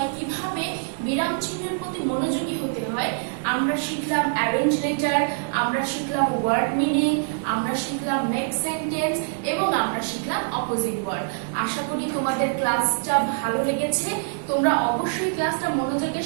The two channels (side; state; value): left; silent; 58 dB below the other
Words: কিভাবে বিরাম চিহ্নের প্রতি মনোযোগী হতে হয়। আমরা শিখলাম অ্যারেঞ্জ লেটার, আমরা শিখলাম ওয়ার্ড মিনিং, আমরা শিখলাম মেক সেন্টেন্স এবং আমরা শিখলাম অপোজিট ওয়ার্ড। আশা করি তোমাদের ক্লাসটা ভালো লেগেছে। তোমরা অবশ্যই ক্লাসটা মনোযোগের